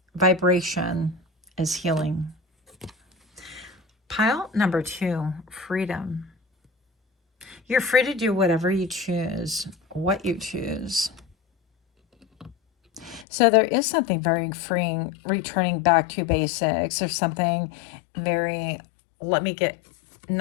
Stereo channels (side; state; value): right; drops out; at 13.2 s